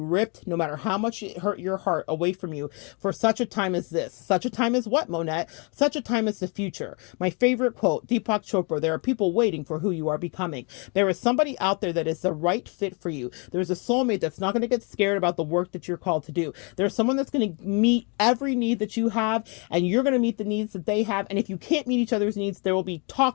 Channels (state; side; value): quieter; right; 34.0 dB